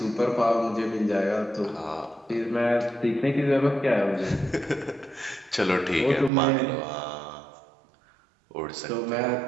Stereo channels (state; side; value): drops out; left; at 6.3 s